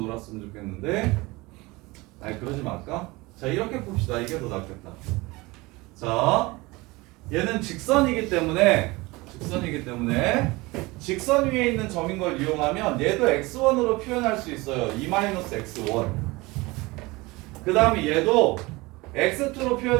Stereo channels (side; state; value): left; quieter; 22.7 dB